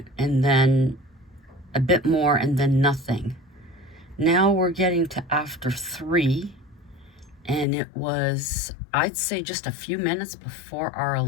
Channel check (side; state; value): right; drops out; at 7.7 s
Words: and then a bit more, and then nothing. Now we're getting to after 3, and it was, I'd say, just a few minutes before our